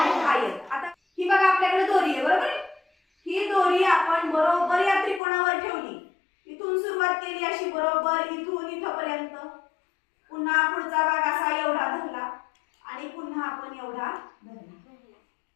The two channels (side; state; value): right; drops out; at 5.2 s